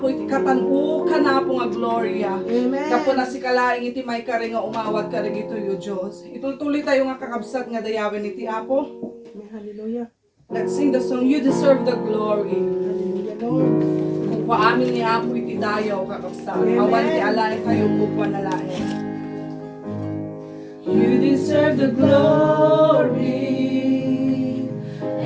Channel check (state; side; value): identical; both; correlation 1.00